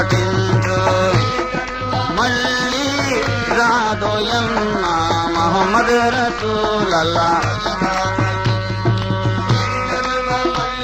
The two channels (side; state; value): both; identical; correlation 1.00